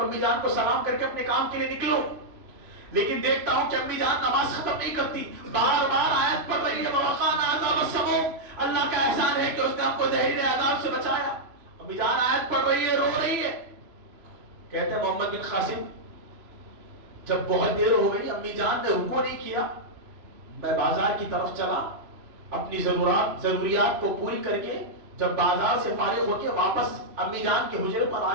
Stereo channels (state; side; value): late; left; 3.0 ms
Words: امی جان کو سلام کر کے اپنے کام کے لیے نکلوں، لیکن دیکھتا ہوں کہ امی جان نماز ختم نہیں کرتی، بار بار آیت پڑھ رہی ہے، ووقانا عذاب السموم، اللہ کا احسان ہے کہ اس نے ہم کو زہریلے عذاب سے بچایا۔ امی جان آیت پڑھ رہی ہے، رو رہی ہے۔ کہتے ہیں محمد بن قاسم جب بہت دیر ہو گئی، امی جان نے رکوع نہیں کیا، میں بازار کی طرف چلا، اپنی ضروریات کو پوری کر کے جب بازار سے فارغ ہو کے واپس امی جان کے حجرے پر